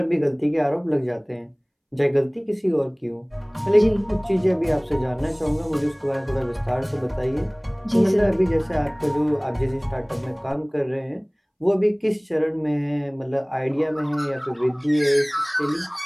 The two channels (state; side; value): identical; both; correlation 1.00